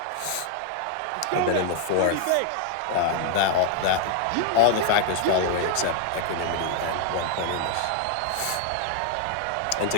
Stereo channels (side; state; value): both; different; correlation 0.00